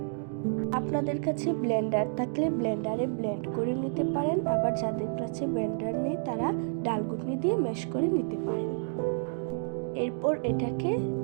আপনাদের কাছে ব্লেন্ডার থাকলে ব্লেন্ডারে ব্লেন্ড করে নিতে পারেন, আবার যাদের কাছে ব্লেন্ডার নেই তারা ডালঘুটনি দিয়ে ম্যাশ করে নিতে পারেন। এরপর এটাকে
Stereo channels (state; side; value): silent; left; digital silence